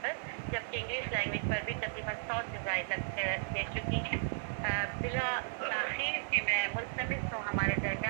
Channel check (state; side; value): silent; left; 54 dB below the other